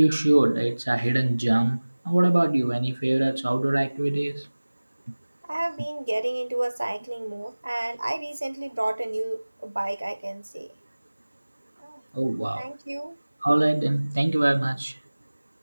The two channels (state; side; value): inverted; both; correlation -1.00